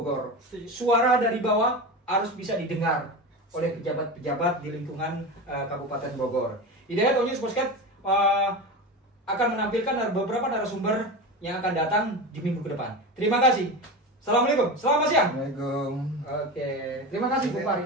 Suara dari bawah harus bisa didengar oleh pejabat-pejabat di lingkungan Kabupaten Bogor. Hidayat All News Podcast akan menampilkan beberapa narasumber yang akan datang di minggu ke depan. Terima kasih. Assalamualaikum. Selamat siang. Assalamualaikum. Oke. Terima kasih Bung Fahri.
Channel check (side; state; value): both; normal; correlation 0.25